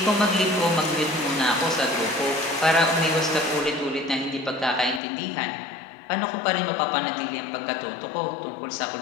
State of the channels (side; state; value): right; drops out; at 5.0 s